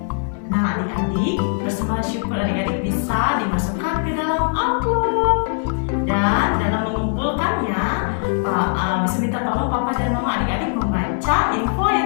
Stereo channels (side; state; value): right; silent; 61 dB below the other